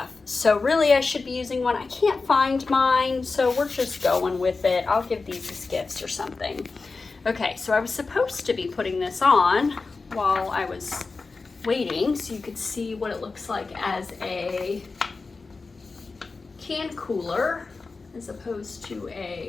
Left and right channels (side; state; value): right; quieter; 4.1 dB